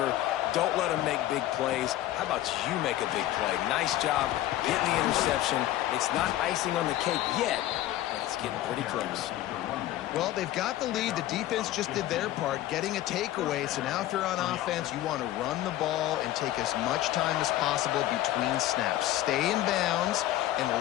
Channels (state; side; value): quieter; right; 14.3 dB